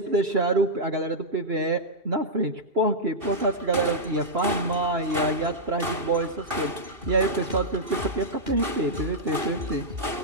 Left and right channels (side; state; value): left; late; 2.6 ms